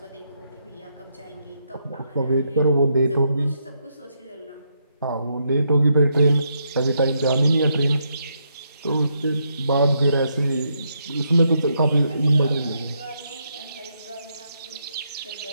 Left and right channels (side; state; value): both; inverted; correlation -0.78